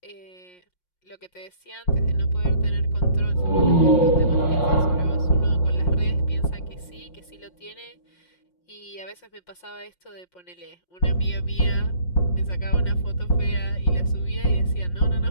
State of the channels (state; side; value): late; right; 5.6 ms